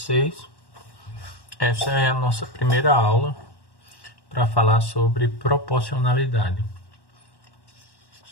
essa é a nossa primeira aula para falar sobre proporcionalidade.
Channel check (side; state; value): right; late; 1.1 ms